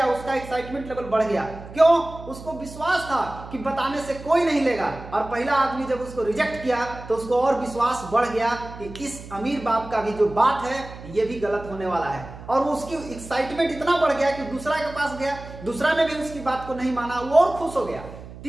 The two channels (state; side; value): noise; right; hum, 15 dB below the sound